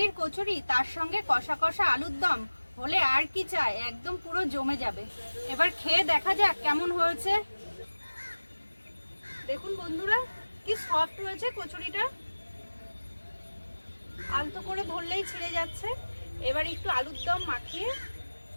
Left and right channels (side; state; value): both; inverted; correlation -1.00